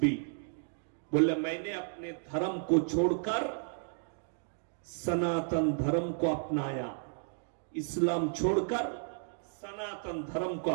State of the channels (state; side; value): silent; left; digital silence